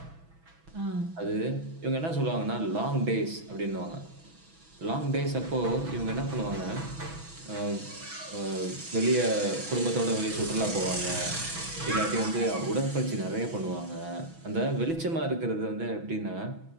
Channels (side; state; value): left; late; 6.1 ms